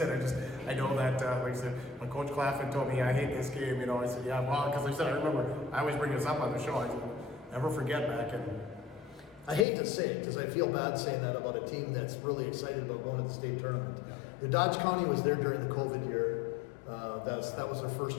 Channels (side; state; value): right; drops out; at 9.7 s